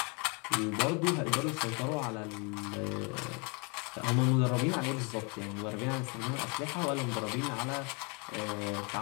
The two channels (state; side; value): quieter; right; 32.4 dB